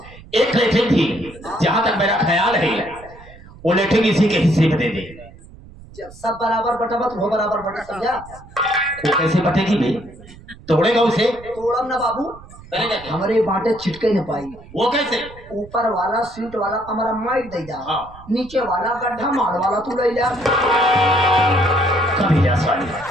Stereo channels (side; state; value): right; noise; rumble, 20 dB below the sound